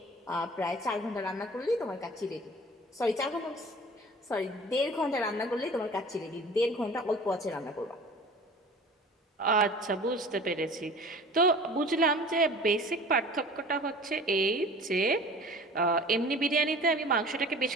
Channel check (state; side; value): normal; both; correlation 0.43